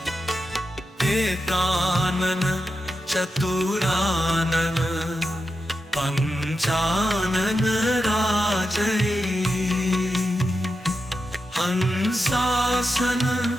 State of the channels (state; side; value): normal; both; correlation 0.89